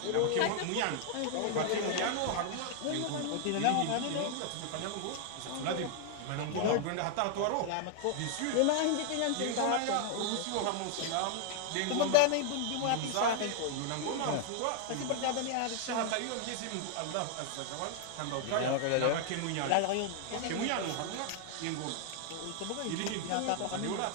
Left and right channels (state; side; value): different; both; correlation 0.00